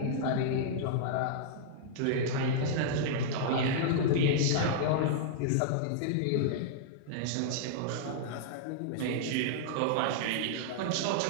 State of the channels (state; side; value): different; both; correlation -0.01